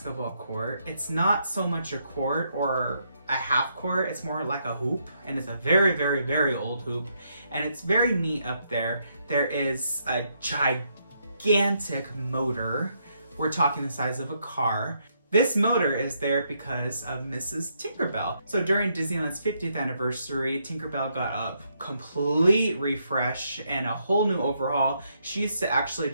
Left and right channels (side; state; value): both; inverted; correlation -0.76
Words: court. It's not so much a court or a half court, it's more like a hoop, and it's a very, very, very old hoop, and it's very neat up there. There is a gigantic motor. We're talking the size of a car. This motor is there because of Mrs. Tinkerbell. So during Disneyland's 50th anniversary, Tinkerbell got a complete refresh and a whole new overhaul. She used to actually